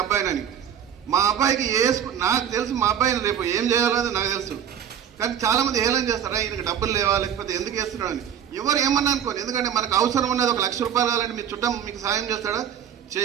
అబ్బాయినని. మా అబ్బాయికి ఏ స్కూల్ నాకు తెలుసు, మా అబ్బాయిని రేపు ఏం చేయాలని నాకు తెలుసు. కానీ చాలా మంది ఏలం చేస్తారా, ఈయనకి డబ్బులు లేవా, లేకపోతే ఎందుకు వేస్తున్నాడని. ఎవరు ఏమన్నా అనుకోని, ఎందుకంటే మనకు అవసరం ఉన్నది 1 లక్ష రూపాయలు కావాలంటే మీ చుట్టం మీకు సాయం చేస్తాడా?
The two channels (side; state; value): left; quieter; 9.0 dB